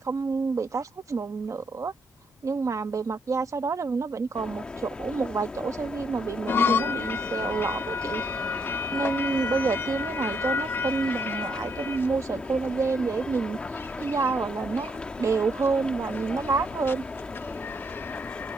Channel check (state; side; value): normal; both; correlation 0.74